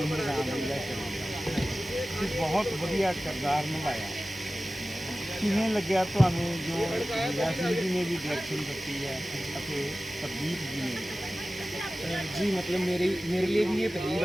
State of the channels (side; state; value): both; normal; correlation 0.96